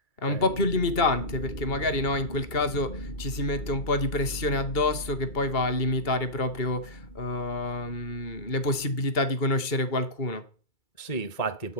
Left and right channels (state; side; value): late; right; 2.3 ms